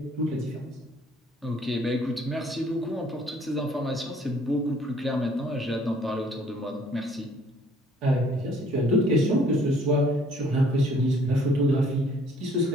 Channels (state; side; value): normal; both; correlation 0.59